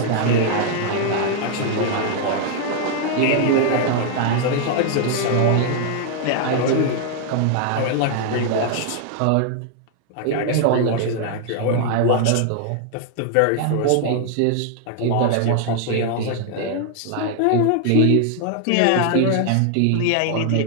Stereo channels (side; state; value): both; different; correlation 0.00